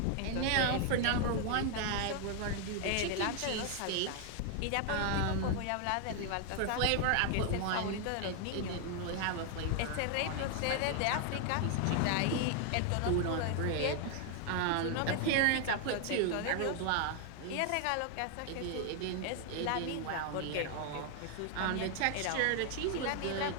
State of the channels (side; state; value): both; different; correlation 0.00